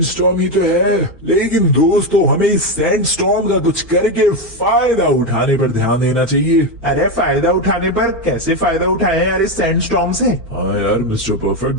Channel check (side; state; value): right; noise; hum, 28 dB below the sound